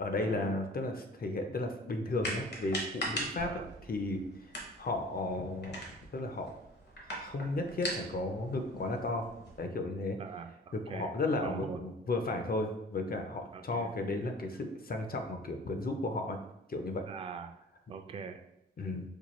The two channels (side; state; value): both; normal; correlation 0.46